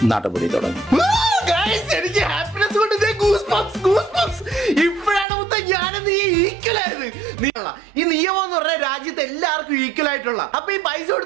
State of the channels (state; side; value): drops out; left; at 5.2 s